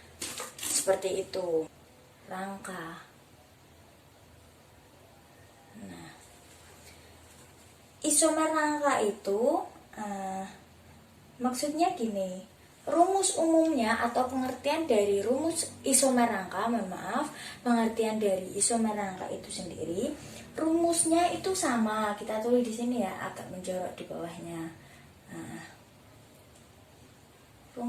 seperti itu. Rangka. Nah, isomer rangka itu maksudnya gini. Rumus umumnya atau pengertian dari rumus isomer rangka, pengertian dari isomer rangka itu sendiri, rumusnya itu sama. Kita tulis di sini ya, agak menjorok di bawahnya. Nah,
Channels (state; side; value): identical; both; correlation 1.00